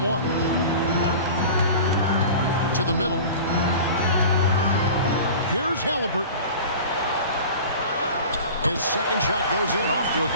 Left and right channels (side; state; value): both; inverted; correlation -0.38